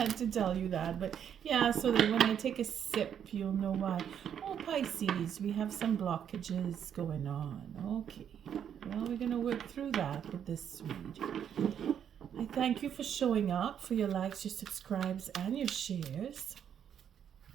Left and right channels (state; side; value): quieter; left; 8.8 dB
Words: to tell you that, but yeah, so that when I take a sip, you'll know why. Oh, Pisces, we have some blockages going on. Okay, well, we're going to work through that with this read. I thank you for showing up, for your likes, your subscribes, and your shares.